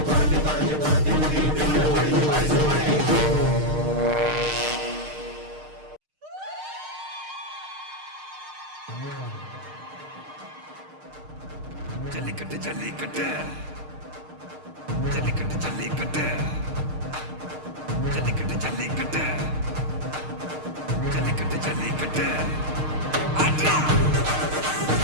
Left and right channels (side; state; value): left; late; 6.5 ms